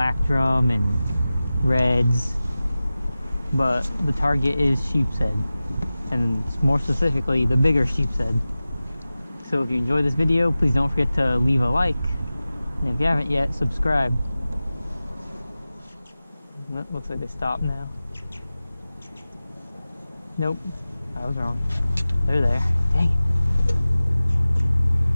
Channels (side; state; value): both; inverted; correlation -0.96